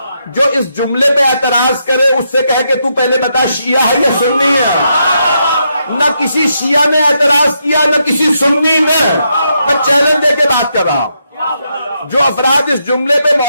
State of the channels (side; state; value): both; inverted; correlation -0.80